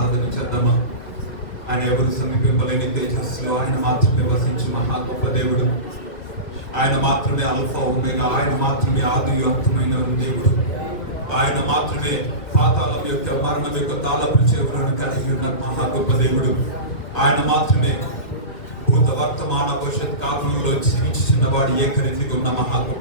చేద్దామా? ఆయన ఎవరు సమీపింపలేని తేజస్సులో ఆయన మాత్రమే వసించి మహా గొప్ప దేవుడు. ఆయన మాత్రమే అల్ఫా ఒమేగా, ఆయన మాత్రమే ఆది అంతమైన దేవుడు. ఆయన మాత్రమే పాతాళం యొక్క మరణం యొక్క తాళపు చెవులను కలిగి ఉన్న మహా గొప్ప దేవుడు. ఆయన మాత్రమే భూత వర్తమాన భవిష్యత్ కాలంలో జీవించిన వాడు ఏకరీతిగా ఉన్న మహా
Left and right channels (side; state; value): right; late; 2.2 ms